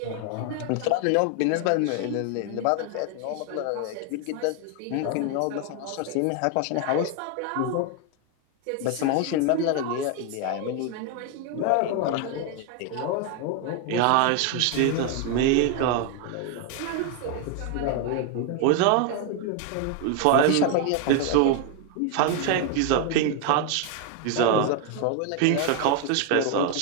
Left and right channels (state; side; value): different; both; correlation 0.01